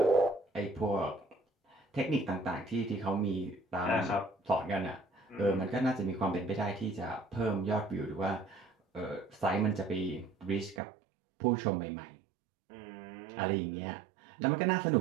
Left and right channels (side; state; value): left; drops out; at 10.8 s